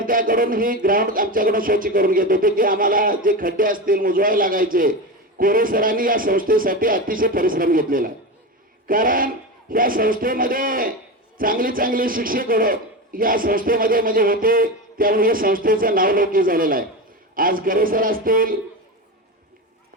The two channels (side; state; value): both; normal; correlation 0.21